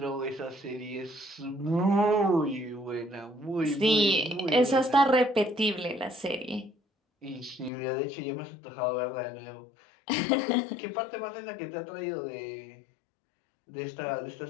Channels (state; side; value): drops out; right; at 7.7 s